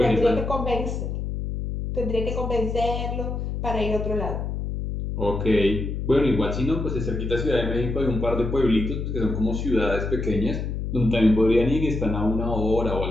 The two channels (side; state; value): left; noise; hum, 3 dB below the sound